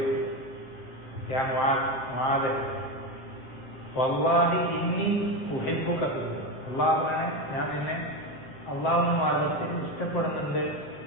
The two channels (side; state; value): right; late; 7.6 ms